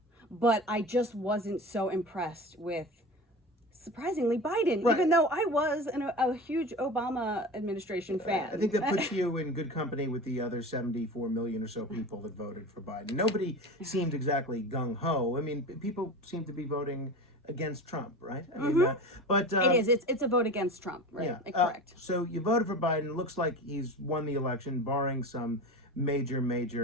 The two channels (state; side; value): normal; both; correlation 0.31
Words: but I just wasn't so impressed with, surprisingly, Biden, Right. even though I was a huge Obama administration fan. I think that puts you in good company with the other 74 million or so people that voted for Biden. Nobody seemed exactly gung-ho. I mean, people seem to be voting against Trump, right? I mean, but It is. It's a vote against Trump, right? yeah. Correct. So you voted for Biden. Looks like he's won the election, barring some